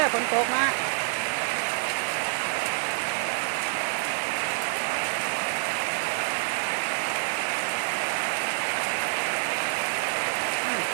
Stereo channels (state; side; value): silent; left; 60 dB below the other